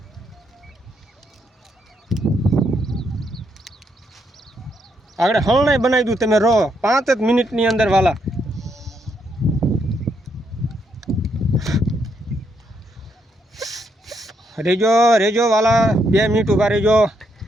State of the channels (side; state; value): both; normal; correlation 0.76